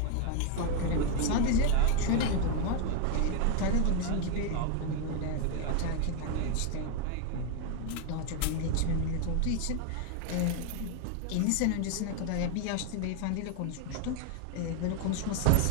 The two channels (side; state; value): both; different; correlation 0.01